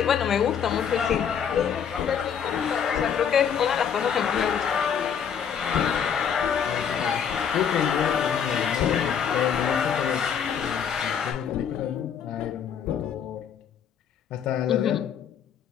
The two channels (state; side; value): quieter; right; 7.8 dB